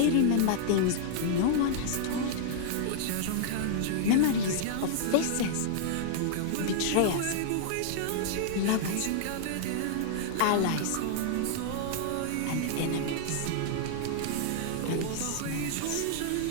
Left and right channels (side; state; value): both; different; correlation -0.01